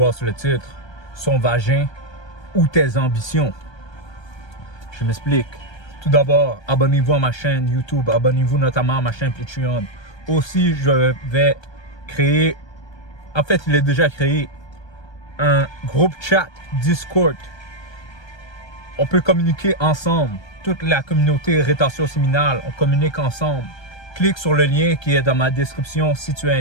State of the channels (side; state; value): right; late; 1.2 ms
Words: sur le titre, son vagin ou tes ambitions. Je m'explique. Tout d'abord, abonnez-vous à ma chaîne YouTube, abonnez-vous notamment à ma chaîne Patreon. Aussi, je vais créer, en fait, il est déjà créé, un groupe chat Discord. On peut communiquer ensemble. Toute la communauté Rétention Séminale, on communique ensemble. Clique sur le lien qui est dans ma description si tu es